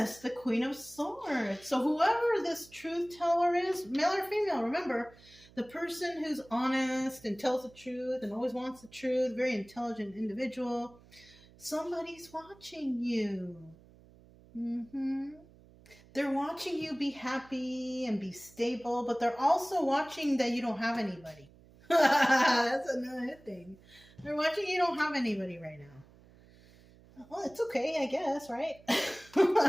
the Queen of Swords. So whoever this truth teller is, male or female, remember, the person who's honest and tells the truth and always wants the truth, very intelligent individual, somebody's watching you. They're watching you be happy and be stable, but they're also watching that you don't have anybody. That's another thing. They're watching you don't have anybody right now. Well, it's okay, I guess, right?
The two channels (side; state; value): right; noise; hum, 25 dB below the sound